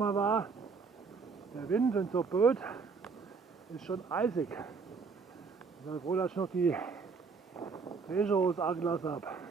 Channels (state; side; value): quieter; left; 5.0 dB